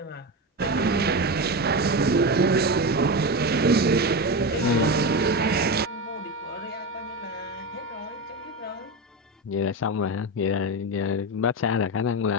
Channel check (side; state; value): both; normal; correlation 0.18